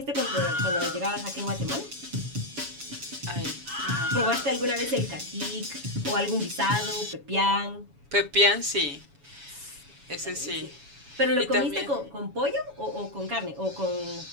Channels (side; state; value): left; late; 7.1 ms